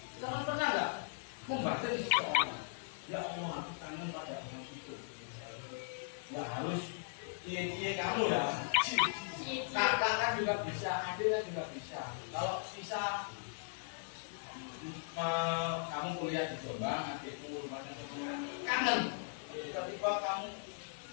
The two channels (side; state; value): right; silent; digital silence